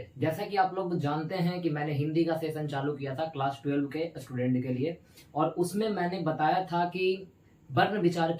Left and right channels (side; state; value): both; identical; correlation 1.00